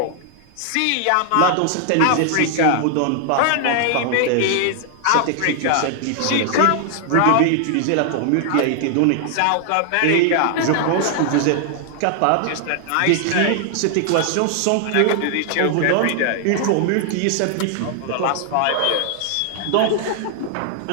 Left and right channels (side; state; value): both; different; correlation 0.00